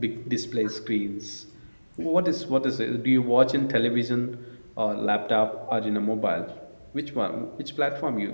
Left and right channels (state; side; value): inverted; both; correlation -1.00